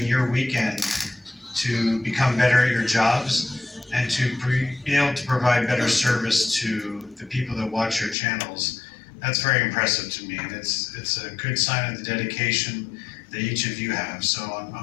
your weekend to become better at your jobs and to be able to provide better service to the people that watch your channels, that's very impressive to me. And it's a good sign of the dedication that each of you have. So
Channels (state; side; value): drops out; right; at 8.2 s